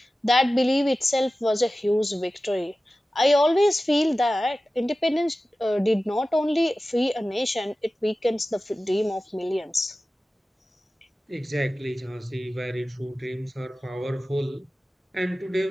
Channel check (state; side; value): normal; both; correlation 0.95